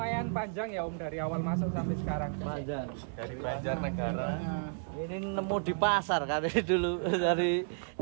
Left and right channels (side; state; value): left; silent; digital silence